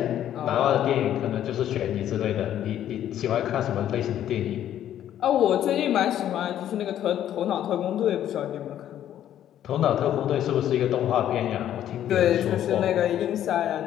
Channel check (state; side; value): quieter; right; 11.2 dB